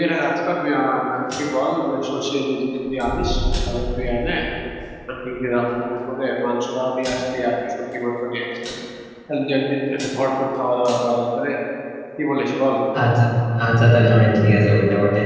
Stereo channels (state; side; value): identical; both; correlation 1.00